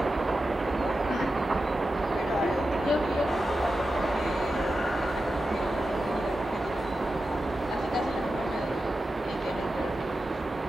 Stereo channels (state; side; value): normal; both; correlation 0.91